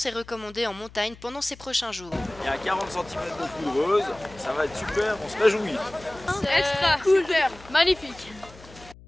est recommandée en montagne pendant ces prochains jours. Il y a 40 cm de couveuse, ça va être super, on se réjouit. Extra cool, magnifique.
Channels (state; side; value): noise; left; hum, 21 dB below the sound